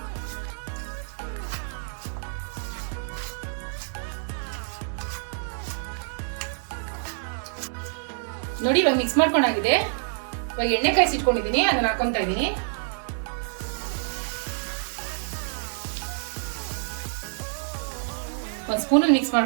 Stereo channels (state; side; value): silent; left; digital silence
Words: ನೋಡಿ, ಇವಾಗ ಮಿಕ್ಸ್ ಮಾಡ್ಕೊಂಡಾಗಿದೆ. ಇವಾಗ ಎಣ್ಣೆ ಕಾಯಿಸಿಟ್ಕೊಂಡಿದೀನಿ, ಅದನ್ನ ಹಾಕೊಂತಾ ಇದೀನಿ. ಒಂದ್ ಸ್ಪೂನ್ ಮಿಕ್ಸ್